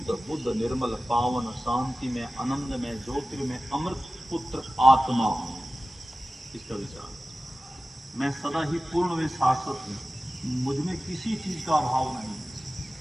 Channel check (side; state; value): both; normal; correlation 0.96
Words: बुद्ध, निर्मल, पावन, शांति में, आनंद में, ज्योतिर्मय, अमृत पुत्र आत्मा हूं। इसका विचार, मैं सदा ही पूर्ण व शाश्वत हूं, मुझ में किसी चीज का अभाव नहीं है।